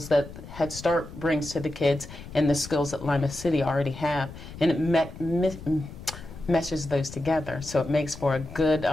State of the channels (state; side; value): noise; left; rumble, 14 dB below the sound